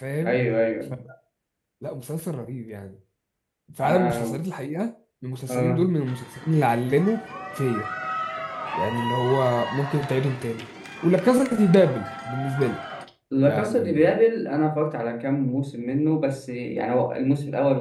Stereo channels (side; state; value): both; identical; correlation 1.00